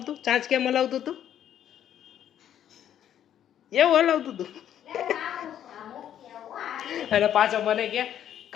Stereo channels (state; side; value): quieter; right; 10.3 dB